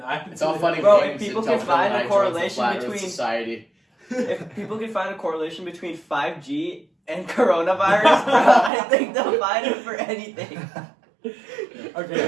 It's all funny Bro, games if people until can find a Phil Knight joins the correlation Flat Earth between- society. If people can find a correlation between 5G and coronavirus, bro, I think they'll find it for anything.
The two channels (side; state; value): left; drops out; at 8.7 s